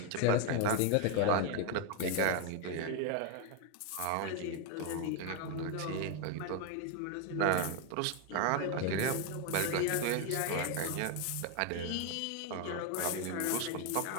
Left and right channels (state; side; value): different; both; correlation 0.01